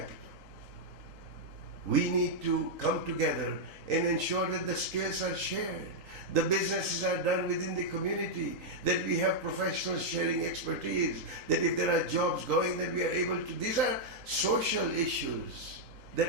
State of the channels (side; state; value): left; late; 3.8 ms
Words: We need to come together and ensure that the skills are shared, the businesses are done within the community, that we have professionals sharing expertise, that if there are jobs going, that we are able to. These are social issues